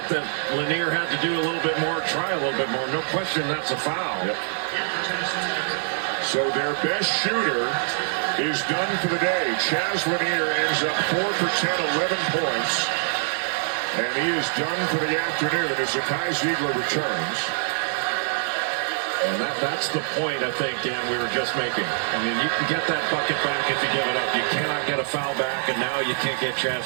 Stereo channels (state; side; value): silent; left; digital silence